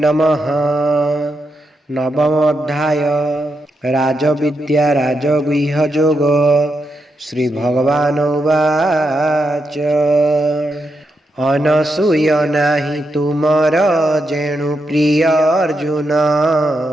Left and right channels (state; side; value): normal; both; correlation 0.84